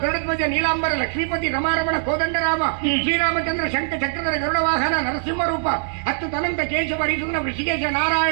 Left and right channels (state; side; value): silent; left; digital silence